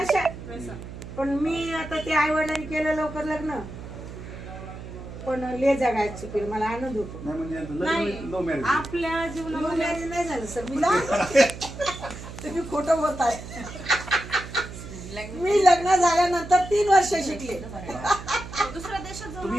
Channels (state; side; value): noise; right; hum, 12 dB below the sound